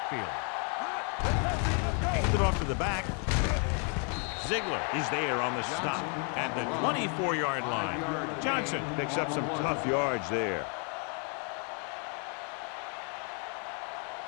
Handed off to the back. Ziegler is there on the stop at the 24-yard line. Johnson picks up some tough yards there.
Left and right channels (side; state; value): right; quieter; 39.5 dB